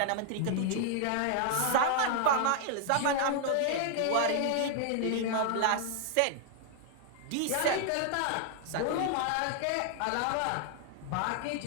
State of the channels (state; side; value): different; both; correlation 0.00